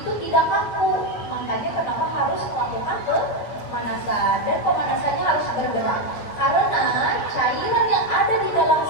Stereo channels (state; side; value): late; right; 9.1 ms